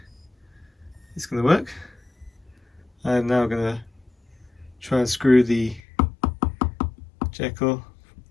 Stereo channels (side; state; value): right; drops out; at 5.8 s